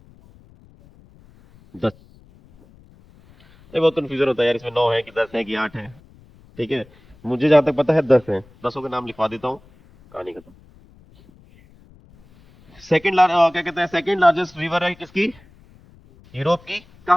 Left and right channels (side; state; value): left; noise; rumble, 27 dB below the sound